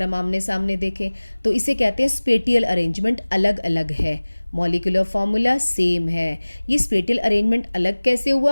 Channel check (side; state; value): both; inverted; correlation -1.00